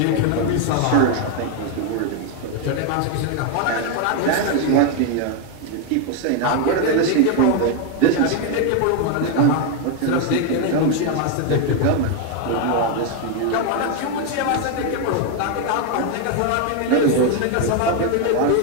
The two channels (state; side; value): different; both; correlation 0.01